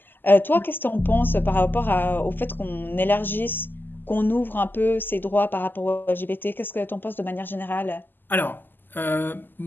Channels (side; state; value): right; late; 0.091 ms